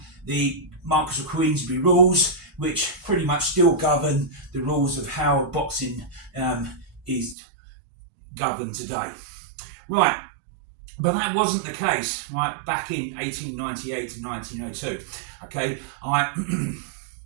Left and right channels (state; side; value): drops out; left; at 7.4 s